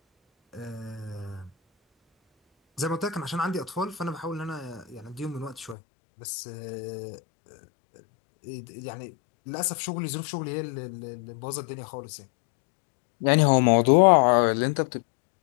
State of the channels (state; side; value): drops out; right; at 5.8 s